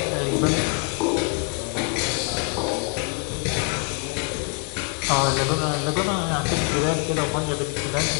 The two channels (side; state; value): right; quieter; 35.3 dB